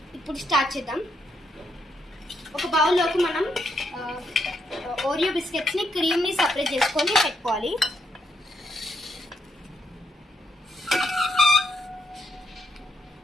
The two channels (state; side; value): normal; both; correlation 0.77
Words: ఇప్పుడు స్టార్ట్ చేద్దాం. ఒక బౌల్ లోకి మనం ఓరియో బిస్కెట్స్ ని క్రీమ్ ని సెపరేట్ చేసుకొని పెట్టుకోవాలి.